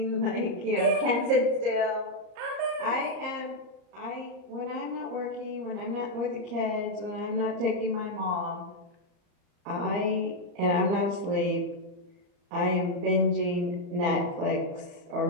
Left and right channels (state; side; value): late; left; 34 ms